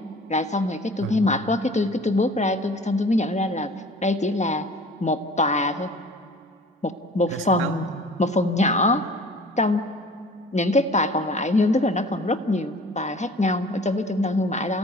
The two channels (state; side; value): normal; both; correlation 0.46